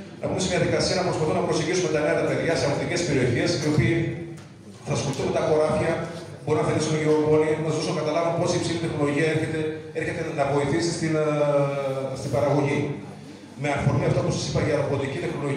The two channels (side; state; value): both; identical; correlation 1.00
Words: να πούμε σε μια διαδικασία να προσπαθούμε να προσεγγίσουμε τα νέα τα παιδιά σε αγροτικές περιοχές, οι οποίοι θα ασχοληθούν με τα χωράφια, μπορεί να θελήσουν γεωργόνοι, να σας δώσω να καταλάβουν πώς η υψηλή τεχνολογία έρχεται να βοηθήσει στην παραγωγή. Με αφορμή αυτό που σας είπα για ρομποτική